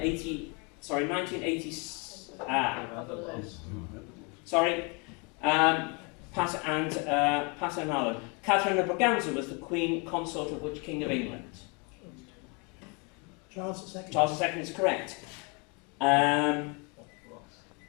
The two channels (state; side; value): quieter; right; 32.2 dB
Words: Pat and Alan. Catherine of Braganza was the Queen Consort of which King of England? Charles II. Charles II is correct. I've